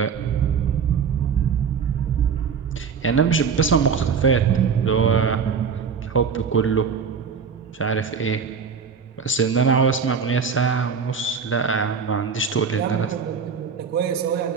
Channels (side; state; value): left; quieter; 6.2 dB